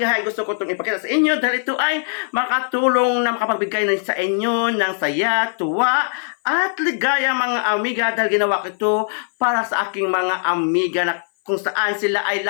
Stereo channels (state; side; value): silent; right; 58 dB below the other